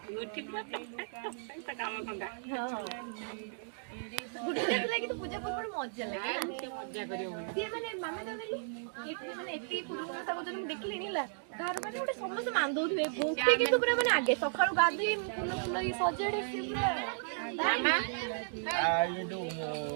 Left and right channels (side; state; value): left; silent; digital silence